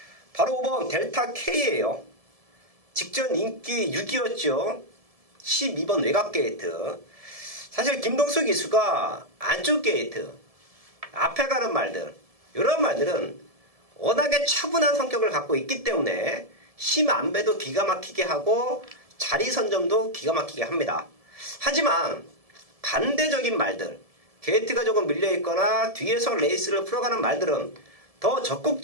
바로 5번 델타 K예요. 직전 인기 6위였죠. 12번 외곽 게이트. 사실 김동수 기수가 안쪽 게이트, 앞에 가는 말들, 이런 말들은 워낙에 차분한 성격을 갖고 있기 때문에 힘 안배도 기가 막히게 하고 자리 선점도 기가 막히게 합니다. 하지만 반대적인 말들, 게이트가 조금 밀려있거나 뒤에서 레이스를 풀어가는 말들은 더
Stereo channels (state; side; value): late; left; 1.7 ms